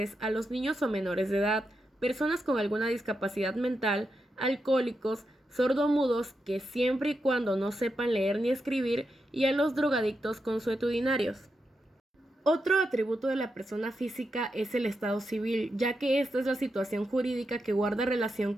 a los niños o menores de edad, personas con alguna discapacidad mental, alcohólicos, sordomudos que siempre y cuando no sepan leer ni escribir, y a los drogadictos consuetudinarios. Otro atributo de la persona física es el estado civil, ya que esta es la situación jurídica que guarda relación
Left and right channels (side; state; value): both; normal; correlation 0.86